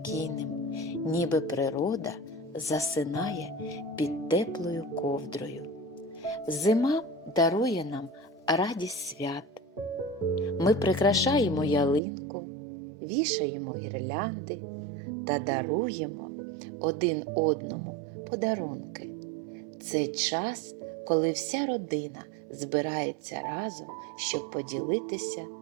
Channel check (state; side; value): drops out; left; at 12.0 s